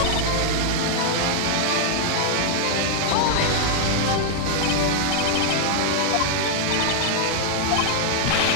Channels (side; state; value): both; different; correlation 0.00